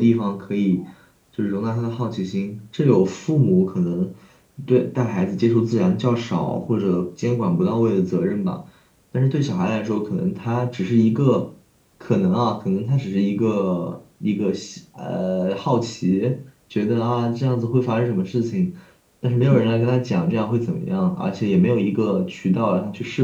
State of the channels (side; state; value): both; identical; correlation 1.00